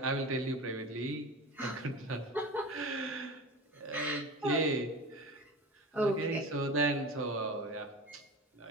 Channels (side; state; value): both; normal; correlation 0.31